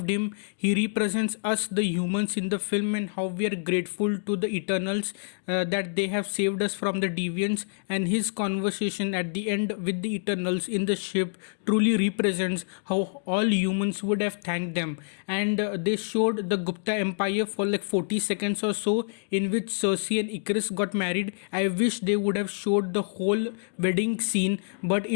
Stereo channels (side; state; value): right; silent; digital silence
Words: him. He represents us, the humans in the film, and how we are grateful to the Eternals that they have saved us from the deviants. And his conversation at the end with the Eternals in the ship truly represents how all humans would have thanked them. And they showed the Gupta Empire for like 40 seconds or so, in which Cersei and Icarus got married. I wish they would have showed the whole wedding scene, but